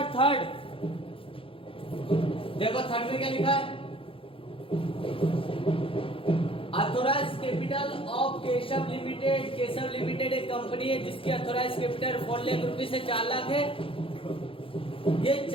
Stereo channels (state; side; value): late; right; 0.26 ms